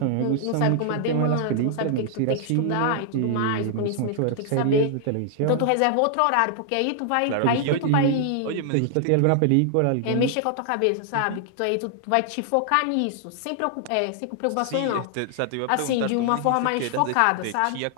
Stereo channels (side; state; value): both; different; correlation 0.00